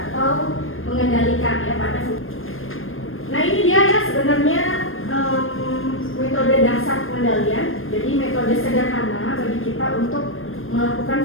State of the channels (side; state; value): right; late; 0.60 ms